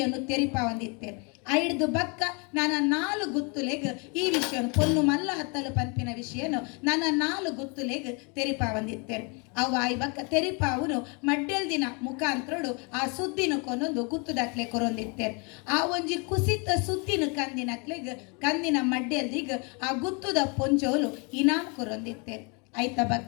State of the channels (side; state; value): right; quieter; 32.8 dB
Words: ತೆರಿಪ ಒಂದಿತ್ತೇರು ಐಡ್ದು ಬಕ್ಕ ನನ್ನ 4 ಗುತ್ತುಲೆಗ್ ಈ ವಿಷಯ ಪೊನ್ನು ಮಲ್ಲ ಹತ್ತಲು ಪಂಪಿನ ವಿಷಯನು ನನ್ನ 4 ಗುತ್ತುಲೆಗ್ ತೆರಿಪ ಬಂದಿತ್ತೇರು ಅವು ಆಯ್ ಬಕ್ಕ ತೆರಿಪ ಅವನು ಮಡ್ಡೆಲ್ ದಿನ ಮುಖಾಂತರಡು ಆ ಸುದ್ದಿನ ಕೊನೊಂದು ಗುತ್ತುದಕ್ಲೆ ಕೊರೊಂದಿತ್ತೇರು ಆ ಒಂಜಿ ಕುಸಿತ ಸುದ್ದಿನ ಕಂದಿನ ಮಡ್ಡೆಲ್ದಿಗ್ ಆ ಗುತ್ತುದ ಪೊಂಜೋಲು ಇನಾಮ್ ಕೊರೊಂದಿತ್ತೇರು ಐತ